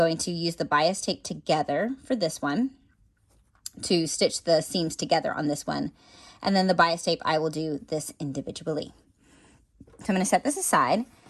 to use the bias tape together for this one to stitch the seams together on this one. And then the bias tape, I will do this individually. So I'm going to set this aside.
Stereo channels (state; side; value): identical; both; correlation 1.00